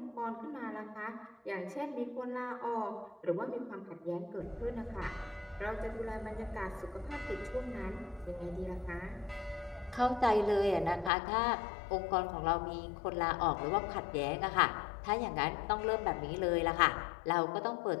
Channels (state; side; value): drops out; right; at 11.1 s